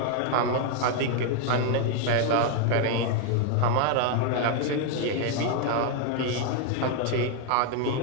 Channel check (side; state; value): both; different; correlation 0.01